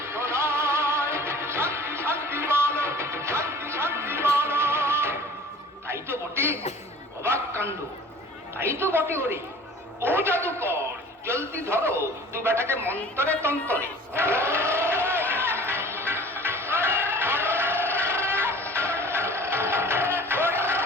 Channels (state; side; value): normal; both; correlation 0.46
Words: নয়, শান্তি শান্তি বলো, শান্তি শান্তি বলো। তাই তো বটে, অবাক কাণ্ড। তাই তো বটে ওরে। ও জাদুকর, জলদি ধরো দু বেটাকে মন্তরে তন্তরে।